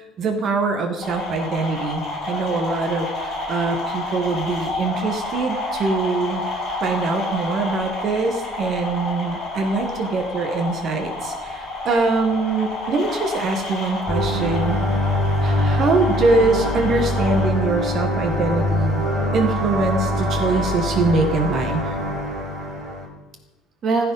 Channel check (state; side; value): normal; both; correlation 0.59